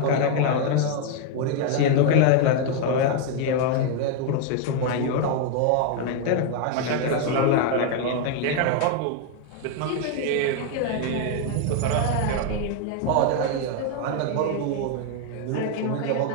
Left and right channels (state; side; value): different; both; correlation 0.01